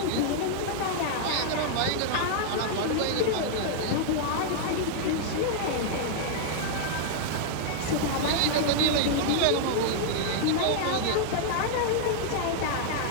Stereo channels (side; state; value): both; different; correlation -0.01